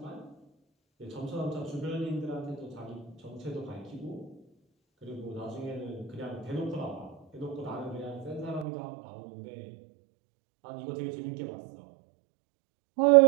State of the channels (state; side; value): drops out; left; at 8.7 s